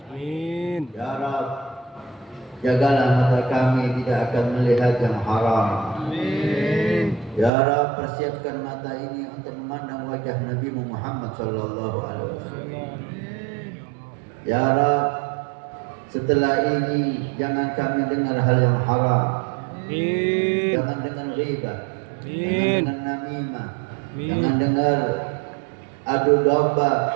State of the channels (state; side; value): drops out; left; at 7.5 s